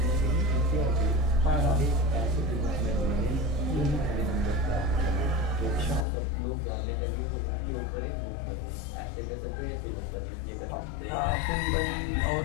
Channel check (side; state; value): right; drops out; at 6.1 s